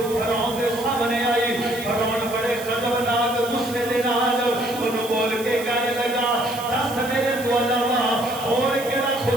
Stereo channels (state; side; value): noise; right; hiss, 13 dB below the sound